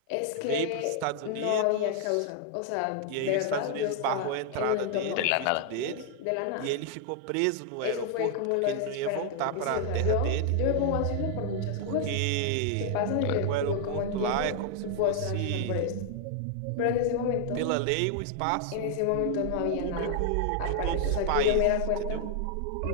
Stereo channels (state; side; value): different; both; correlation 0.00